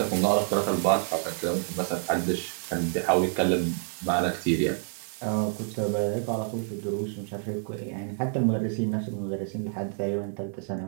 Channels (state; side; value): silent; left; digital silence